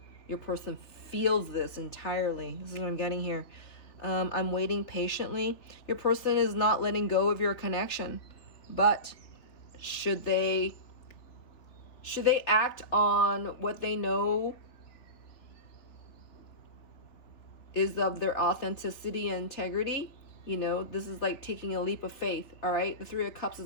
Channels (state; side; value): late; right; 3.4 ms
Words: Your person feels this entirely. This is what I'm getting here. I'm waiting patiently. Your person is not letting go of your connection, but should they act on what they know is of their authenticity and integrity? You know, this is like taking a leap of faith, all right? The Three of Cups